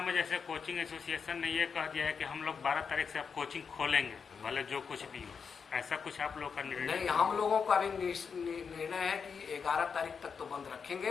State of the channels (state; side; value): quieter; right; 6.0 dB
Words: में जैसे कोचिंग एसोसिएशन ने ये कह दिया है कि हम लोग 12 तारीख से आप कोचिंग खोलेंगे, भले जो कुछ भी हो, ऐसा कुछ आप लोग का निर्णय? नहीं, हम लोगों का अभी निर्णय है कि 11 तारीख तक तो बंद